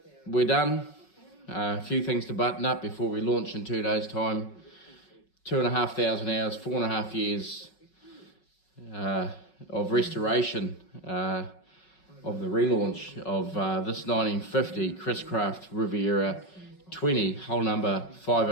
We're done. A few things to button up before we launch in 2 days' time. 2,500 hours, 4.5 years of restoration of the relaunch of this 1950 Chriscraft Riviera 20, hull number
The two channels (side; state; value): right; late; 5.4 ms